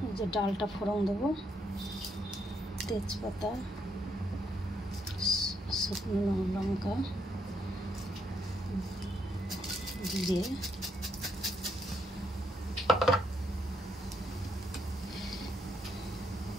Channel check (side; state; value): both; normal; correlation 0.76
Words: এই যে ডালটা ফোড়ন দেবো, তেজপাতা, শুকনো লঙ্কা দিয়ে